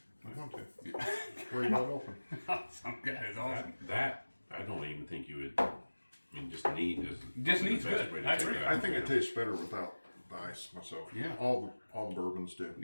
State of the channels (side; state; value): both; inverted; correlation -1.00